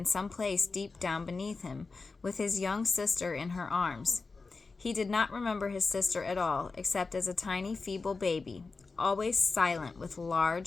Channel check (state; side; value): quieter; right; 4.1 dB